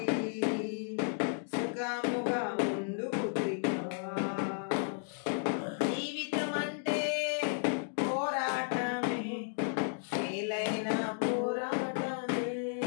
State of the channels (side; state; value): right; silent; digital silence